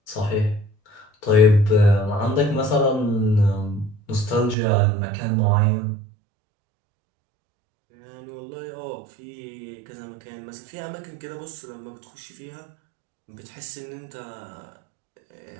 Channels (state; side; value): drops out; left; at 4.5 s